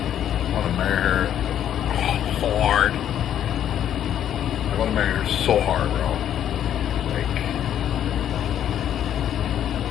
I want to marry her so hard. I want to marry her so hard, bro. Like,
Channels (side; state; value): right; quieter; 10.3 dB